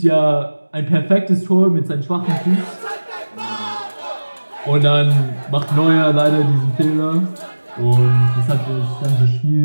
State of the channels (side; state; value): both; inverted; correlation -1.00